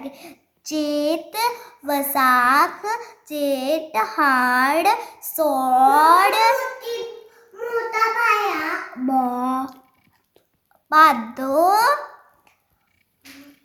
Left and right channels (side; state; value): both; identical; correlation 1.00